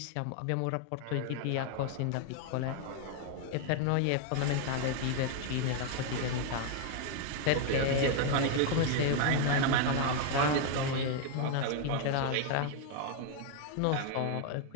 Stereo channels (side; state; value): both; different; correlation 0.00